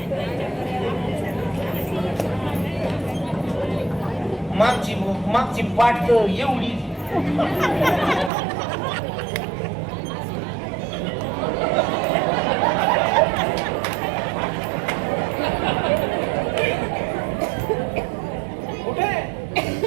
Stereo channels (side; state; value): left; drops out; at 8.3 s